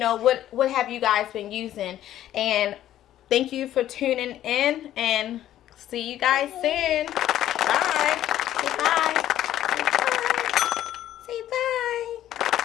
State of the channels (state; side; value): quieter; right; 12.5 dB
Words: what have you guys been using. And thank you for tuning in, and see you guys soon. Bye. Say bye. Say bye.